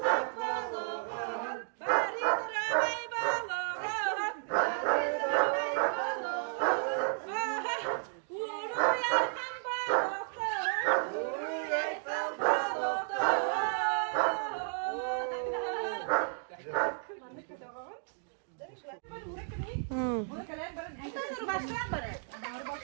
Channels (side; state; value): left; silent; digital silence